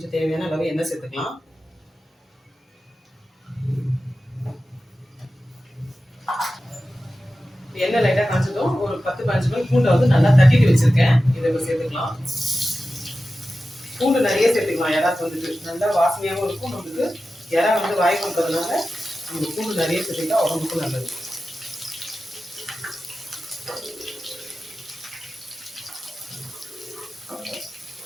தேவையான அளவு எண்ணெய் சேர்த்துக்கலாம். எண்ணெய் லைட்டாக காய்ச்சதும் ஒரு 10-15 மினிட் பூண்டை வந்து நல்லா தட்டிட்டு வச்சுருக்கேன். இதை இப்போ சேர்த்துக்கலாம். பூண்டு நிறைய சேர்த்துக்கலாம். இறாக்கு வந்துட்டு நல்லா வாசனையாகவும் இருக்கும். நம்மளுக்கு இறா வந்து வாய் கொடுக்கறதுனால நம்ம பூண்டு நிறைய சேர்த்துக்கிட்டா உடம்புக்கும் நல்லது.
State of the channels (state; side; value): normal; both; correlation 0.93